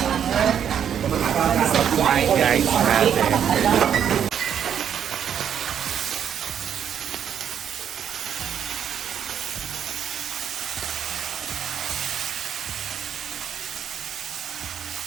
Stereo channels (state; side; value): quieter; left; 8.8 dB